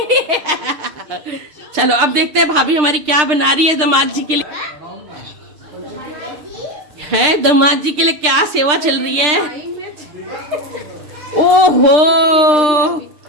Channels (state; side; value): late; left; 6.6 ms